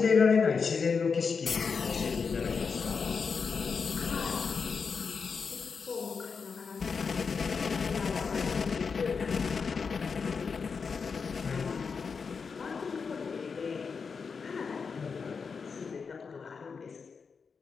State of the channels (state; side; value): quieter; right; 5.4 dB